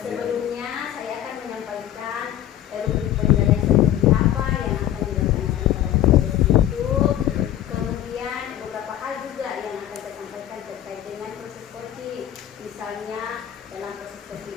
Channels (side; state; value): right; quieter; 12.0 dB